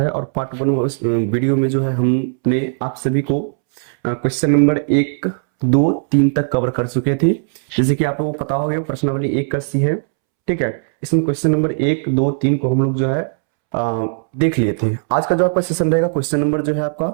और पार्ट वन वीडियो में जो है हमने आप सभी को क्वेश्चन नंबर 1, 2, 3 तक कवर कर चुके थे। जैसे कि आप लोगों को पता हो गया प्रश्नावली 1 का सी है, ठीक है। इसमें क्वेश्चन नंबर 1, 2, 3 को हम लोग जो है देख लिए थे। आज का जो आपका सेशन रहेगा क्वेश्चन नंबर जो है आपका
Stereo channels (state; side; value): silent; left; 68 dB below the other